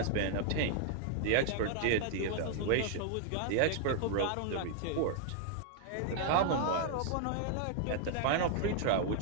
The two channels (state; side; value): different; both; correlation -0.01